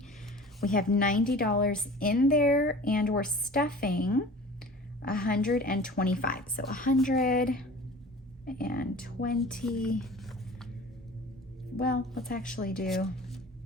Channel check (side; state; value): both; normal; correlation 0.42